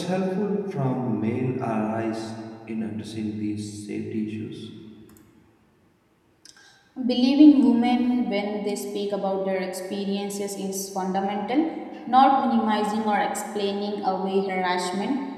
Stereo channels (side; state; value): both; identical; correlation 1.00